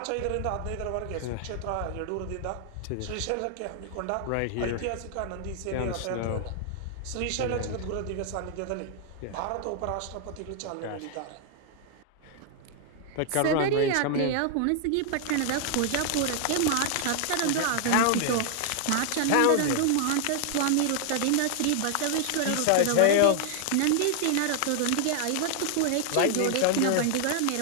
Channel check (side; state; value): both; different; correlation 0.00